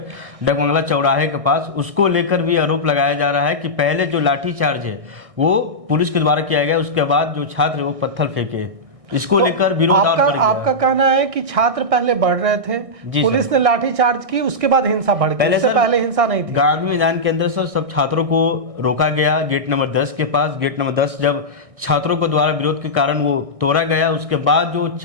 डाक बंगला चौराहे के पास। उसको लेकर भी आरोप लगाया जा रहा है कि पहले जो लाठीचार्ज है वो पुलिस के द्वारा किया गया, उसके बाद जो छात्र वो पत्थर फेंके। इसको लेकर विरोध और बढ़ गया। आपका कहना है कि छात्र पहले बढ़ रहे थे, पुलिस ने लाठीचार्ज की, उसके बाद हिंसा बढ़ गई, पहले हिंसा नहीं थी। गांधी मैदान के अंदर सर सब छात्रों को रोका गया गेट नंबर 10 के पास। गेट नंबर 10 जब छात्रों को द्वारा विरोध के कारण वो तोड़ा गया, उसके बाद जो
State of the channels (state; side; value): late; left; 1.6 ms